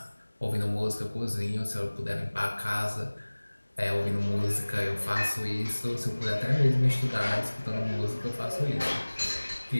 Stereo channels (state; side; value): inverted; both; correlation -1.00